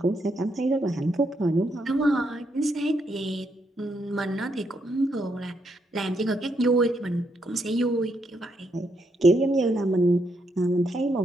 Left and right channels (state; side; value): normal; both; correlation 0.77